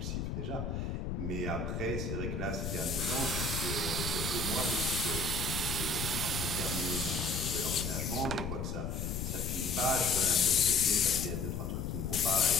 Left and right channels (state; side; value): noise; left; rumble, 3 dB below the sound